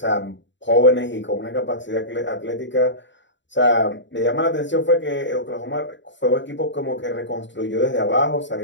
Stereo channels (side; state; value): right; late; 0.53 ms